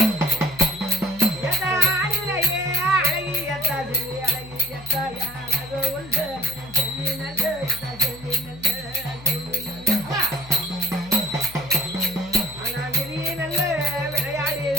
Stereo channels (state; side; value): noise; left; hum, 18 dB below the sound